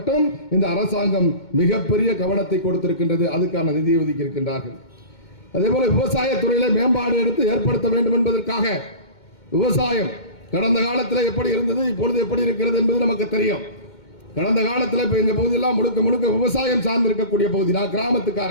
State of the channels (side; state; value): right; late; 2.2 ms